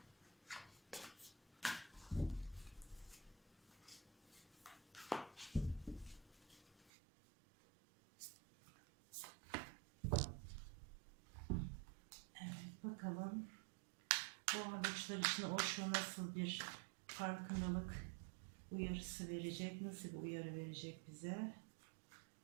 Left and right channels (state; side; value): drops out; left; at 6.9 s